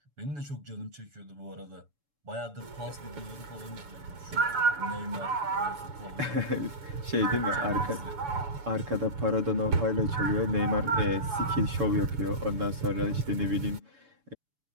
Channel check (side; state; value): left; late; 7.0 ms